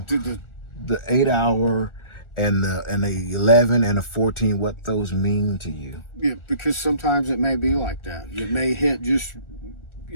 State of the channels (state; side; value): late; right; 1.4 ms